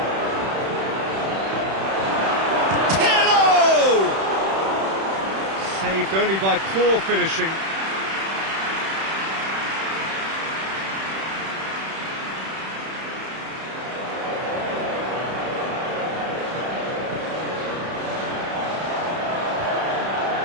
Pirlo! Saved only by poor finishing.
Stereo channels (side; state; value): left; late; 31 ms